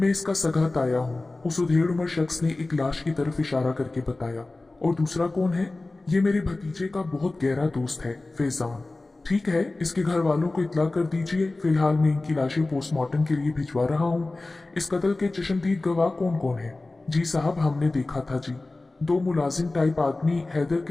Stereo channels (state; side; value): quieter; right; 3.1 dB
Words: इसका सगा ताया हूँ, उस उधेड़ उम्र शख्स ने एक लाश की तरफ इशारा करके बताया। और दूसरा कौन है? ये मेरे भतीजे का बहुत गहरा दोस्त है, फैजान। ठीक है, इसके घर वालों को इत्तला कर दीजिए। फिलहाल मैं इनकी लाशें पोस्टमार्टम के लिए भिजवा रहा हूँ। इस कत्ल के चश्मदीद गवाह कौन कौन है? जी साहब, हमने देखा था जी। दो मुलाजिम टाइप आदमी हैदर